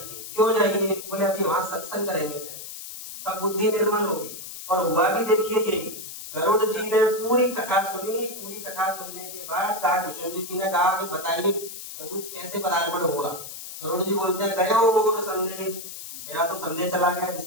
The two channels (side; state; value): left; noise; hiss, 11 dB below the sound